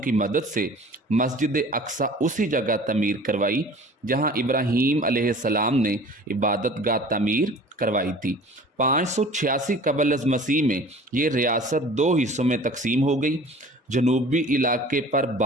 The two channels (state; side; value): normal; both; correlation 0.45